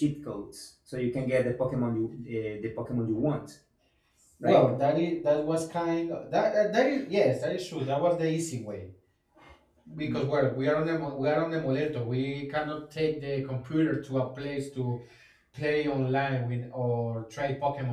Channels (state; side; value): identical; both; correlation 1.00